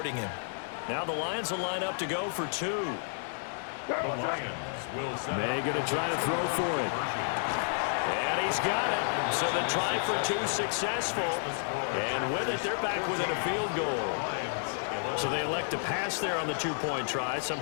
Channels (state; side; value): silent; right; digital silence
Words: him. Now the Lions will line up to go for 2. The Lions will set May going to try to throw for it. And he's got it. So the try for two successful. And with it, they're back within a field goal. So they elect to pass there on the two-point try.